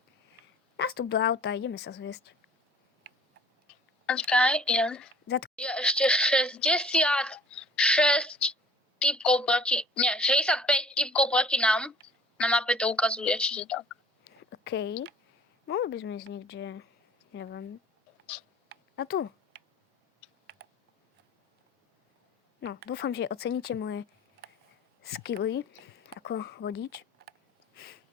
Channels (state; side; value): normal; both; correlation 0.50